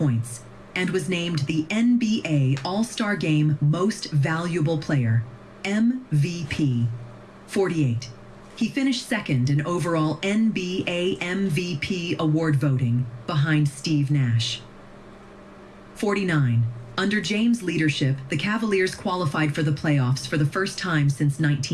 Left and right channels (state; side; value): identical; both; correlation 1.00